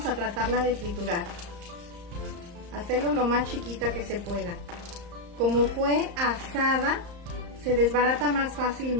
a tratarla de triturar. Hacerlo lo más chiquita que se pueda. Como fue asada, se desbarata más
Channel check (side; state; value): left; late; 34 ms